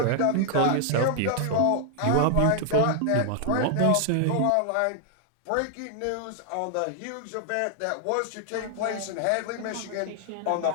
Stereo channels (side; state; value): both; different; correlation 0.00